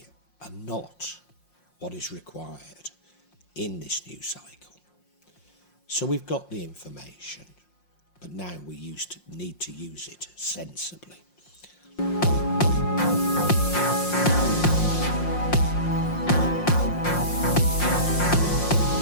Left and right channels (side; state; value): right; late; 5.6 ms